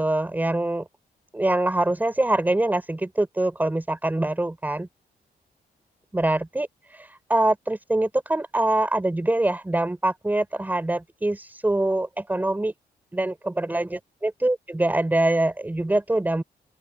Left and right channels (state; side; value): normal; both; correlation 0.94